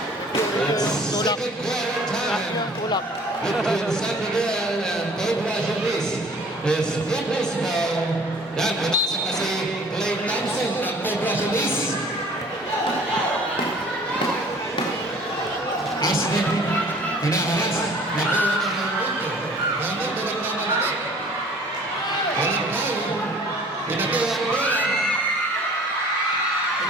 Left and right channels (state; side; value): normal; both; correlation 0.51